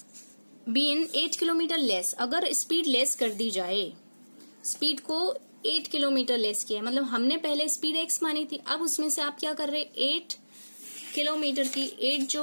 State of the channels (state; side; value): inverted; both; correlation -1.00